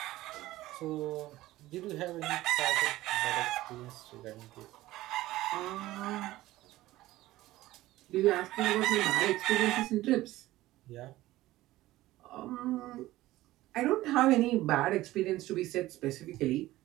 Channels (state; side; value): quieter; left; 16.6 dB